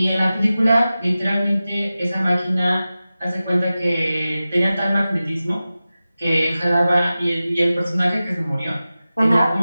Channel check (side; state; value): both; inverted; correlation -0.95